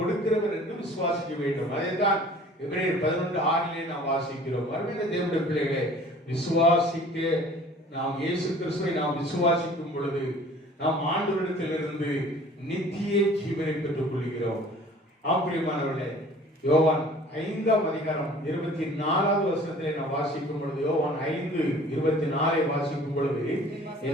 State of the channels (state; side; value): normal; both; correlation 0.49